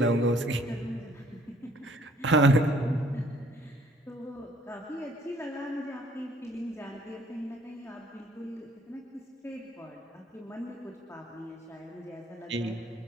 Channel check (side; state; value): both; normal; correlation 0.60